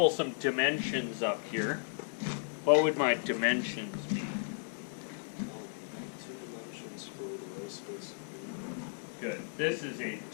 some dimensions up here, what would my dimensions be? 2 dimensions for the row space of B. Good. This is a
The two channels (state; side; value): silent; right; digital silence